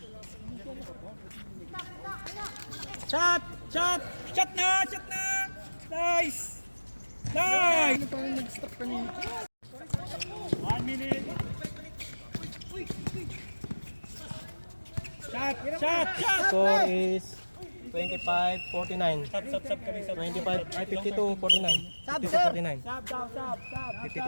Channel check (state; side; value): inverted; both; correlation -1.00